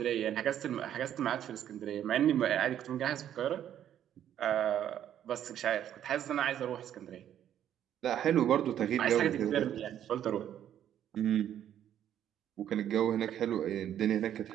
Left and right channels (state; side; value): quieter; left; 10.5 dB